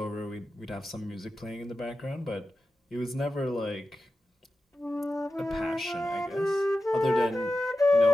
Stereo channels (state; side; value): normal; both; correlation 0.92